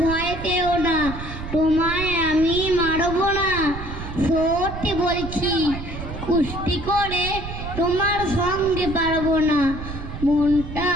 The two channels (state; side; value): noise; right; rumble, 9 dB below the sound